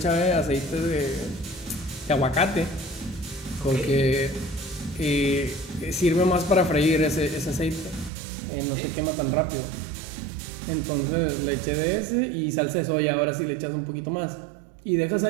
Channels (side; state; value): left; drops out; at 8.1 s